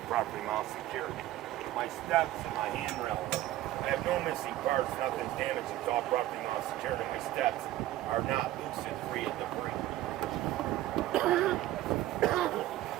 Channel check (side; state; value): left; quieter; 15.0 dB